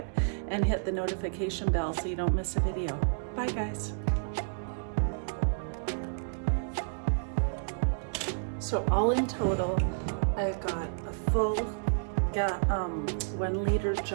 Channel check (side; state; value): left; silent; digital silence